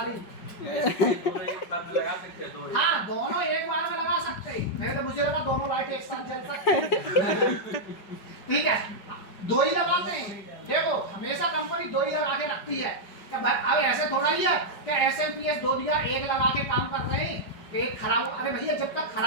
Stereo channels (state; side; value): late; right; 5.1 ms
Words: दोनों एक साथ में लगा सकते हैं, दो। हाँ, दोनों एक बार में लगा सकते हैं। नहीं तो मुझे लगा दोनों लाइट एक साथ जल सकते हैं। ठीक है, 2 ही लगाते हैं। देखो हमेशा कंपनी 2 ही लगा के रखती है। क्या अब ऐसे थोड़ा ही है क्या एसएमपीएस 2 दिया, एक लगा के काम कर रहे हैं, एक खराब। अरे भैया, जब तक